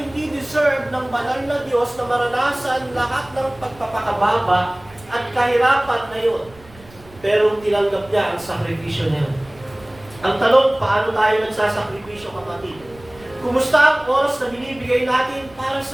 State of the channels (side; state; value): right; noise; rumble, 23 dB below the sound